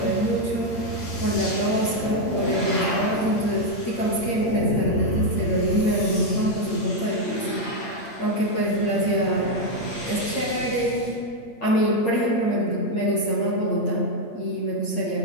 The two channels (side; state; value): right; late; 8.6 ms